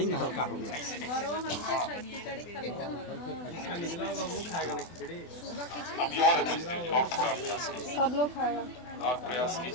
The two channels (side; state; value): right; late; 24 ms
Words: ऐसे अब और और थोड़ा अभ्यास कीजिए, सब लोग खाएगा। और प्रयास